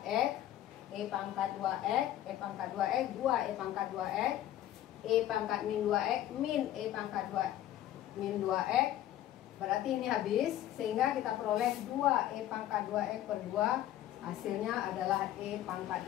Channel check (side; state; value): right; quieter; 12.8 dB